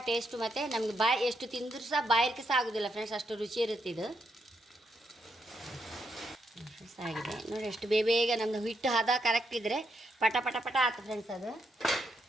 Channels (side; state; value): both; normal; correlation 0.80